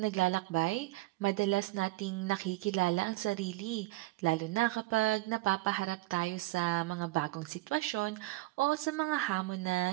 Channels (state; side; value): quieter; left; 19.8 dB